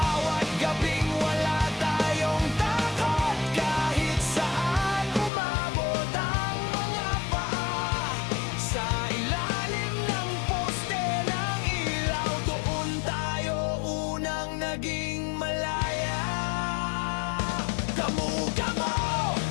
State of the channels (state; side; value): drops out; right; at 5.3 s